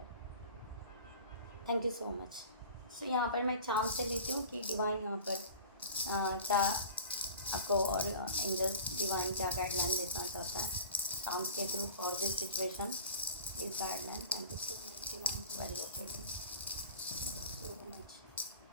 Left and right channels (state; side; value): inverted; both; correlation -0.41